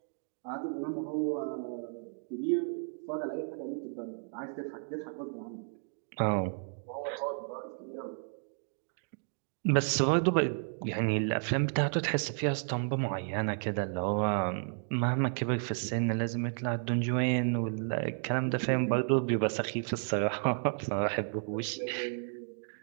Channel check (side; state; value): left; silent; 56 dB below the other